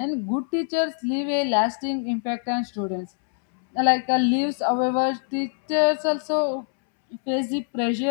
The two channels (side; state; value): right; silent; 63 dB below the other